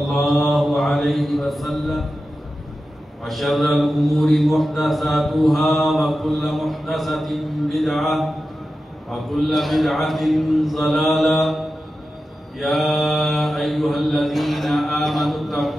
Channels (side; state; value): both; normal; correlation 0.92